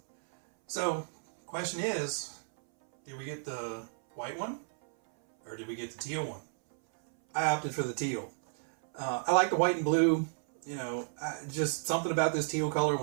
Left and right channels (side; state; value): left; silent; 56 dB below the other